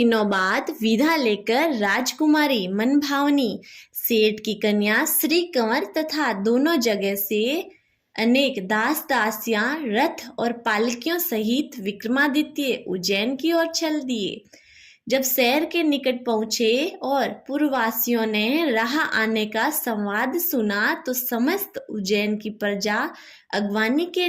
बाद विदा लेकर राजकुमारी मनभावनी, सेठ की कन्या श्री कंवर तथा दोनों जगह से अनेक दास दासियां रथ और पालकियों सहित विक्रमादित्य उज्जैन की ओर चल दिए। जब शहर के निकट पहुंचे और पूर्ववासियों ने राह आने का संवाद सुना तो समस्त उज्जैन की प्रजा अगवानी के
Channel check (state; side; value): identical; both; correlation 1.00